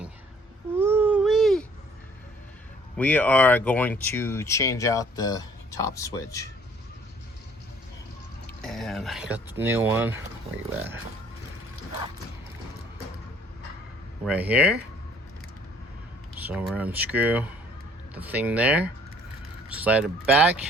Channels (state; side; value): normal; both; correlation 0.58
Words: Woo-wee. We are going to change out the top switch. And I got the new one. Where you at? Right here. So we're unscrew the thing there. Slide it back.